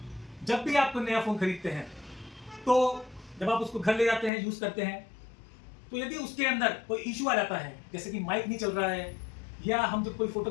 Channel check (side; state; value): right; drops out; at 4.3 s